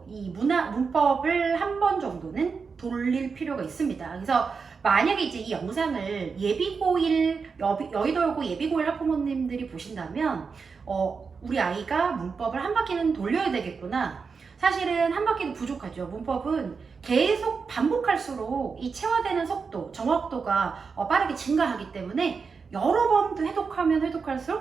이 문법을 한 번 정도는 돌릴 필요가 있습니다. 그래서 만약에 이제 이 영상을 여의도여고 예비고일 학부모님들이 보신다면 우리 아이가 문법을 한 바퀴는 돌려야 되겠구나. 사실은 한 바퀴는 부족하죠. 문법은 계속 반복할수록 이 체화되는 속도, 정확도가 빠르게 증가하기 때문에 여러 번 해독하면 해독할수록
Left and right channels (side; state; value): left; quieter; 5.2 dB